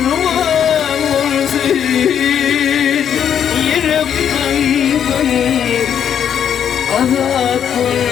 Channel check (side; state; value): right; quieter; 8.7 dB